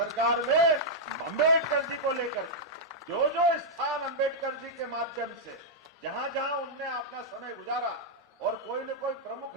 में, अंबेडकर जी को लेकर जो जो स्थान अंबेडकर जी के माध्यम से जहां जहां उनने अपना समय गुजारा और कोई न कोई प्रमुख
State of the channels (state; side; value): normal; both; correlation -0.05